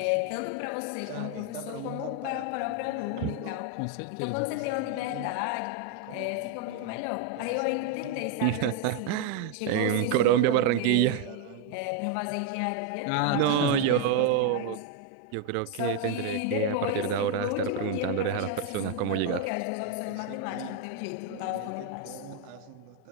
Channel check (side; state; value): both; different; correlation 0.01